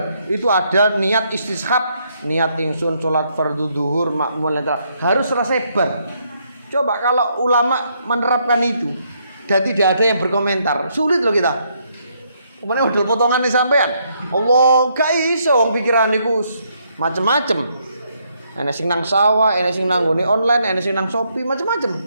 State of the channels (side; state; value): both; inverted; correlation -0.74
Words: itu ada niat istishab, niat ingsun sholat fardu duhur makmul harus selesai bar. Coba kalau ulama menerapkan itu dan tidak ada yang berkomentar, sulit loh kita. Kemudian udah potongan nih sampean. Allah gak iso wong pikiran niku macem-macem. Enek sing nang sawah, enek sing nang ngone online, enek sing nang Shopee, macem-macem.